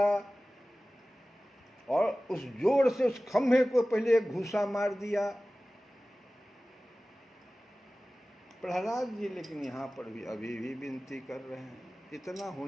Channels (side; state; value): both; normal; correlation 0.97